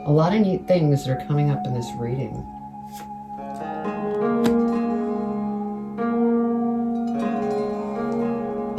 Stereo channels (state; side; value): identical; both; correlation 1.00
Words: a lot of neat things that are coming up in this reading.